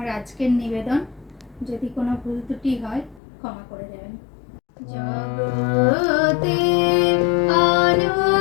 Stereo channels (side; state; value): right; drops out; at 3.2 s